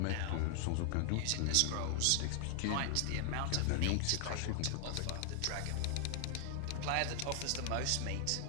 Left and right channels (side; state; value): both; different; correlation 0.00